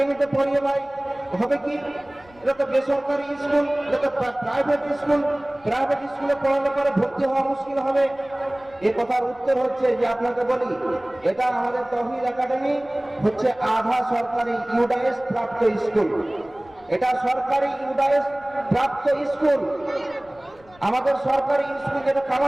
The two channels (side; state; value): left; noise; rumble, 27 dB below the sound